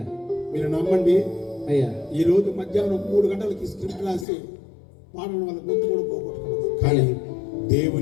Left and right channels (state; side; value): drops out; right; at 4.2 s